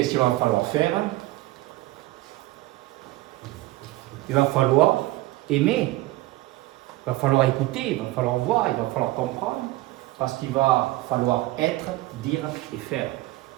qu'il va falloir faire? Il va falloir aimer, il va falloir écouter, il va falloir voir, il va falloir comprendre, parce qu'il va falloir être, dire et faire.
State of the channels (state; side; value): quieter; left; 18.2 dB